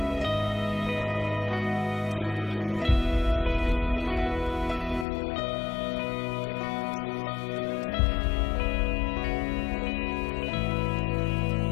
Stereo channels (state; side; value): drops out; right; at 5.1 s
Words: technology is used to help the player get themselves into the game. Where you think that you're inside the